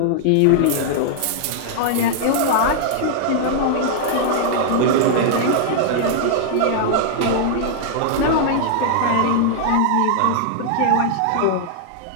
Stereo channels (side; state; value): both; different; correlation -0.01